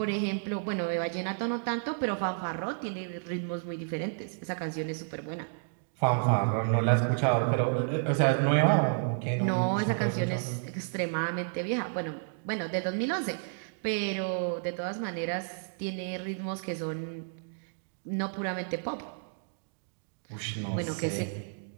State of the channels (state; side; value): silent; left; digital silence